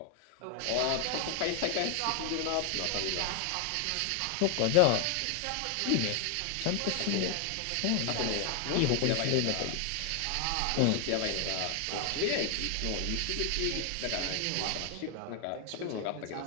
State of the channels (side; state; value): both; different; correlation 0.00